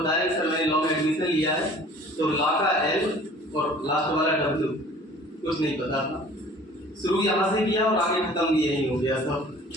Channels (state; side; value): normal; both; correlation 0.49